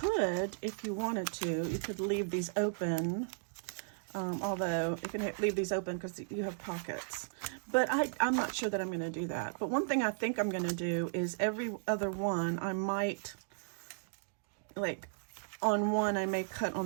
if you wanted to, you could leave these open. Although you can leave these open because you have pockets. But I'm not sure that I'm going to do that. But one thing I think I'm going to do is every other one, I might, like, on one I may cut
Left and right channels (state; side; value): silent; left; digital silence